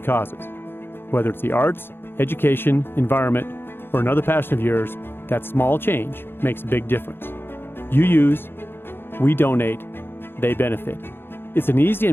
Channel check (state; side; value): late; right; 0.10 ms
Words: Whether it's the arts, education, environment, or another passion of yours, that small change makes a big difference. You use, we donate, they benefit. It's an easy